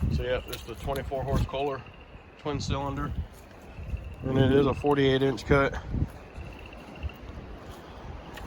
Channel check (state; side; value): identical; both; correlation 1.00